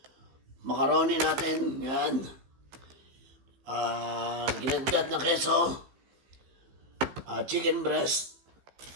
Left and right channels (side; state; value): left; late; 15 ms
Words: macaroni natin. Yan. Ginadgad na keso. Chicken breast.